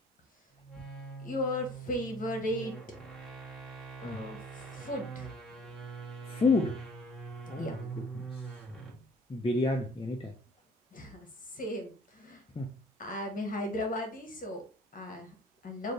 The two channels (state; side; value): normal; both; correlation 0.54